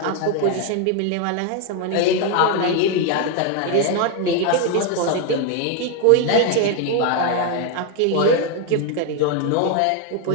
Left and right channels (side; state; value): both; different; correlation 0.01